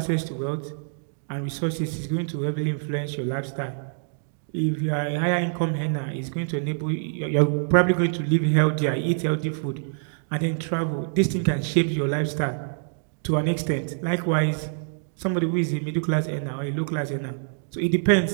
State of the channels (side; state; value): left; silent; digital silence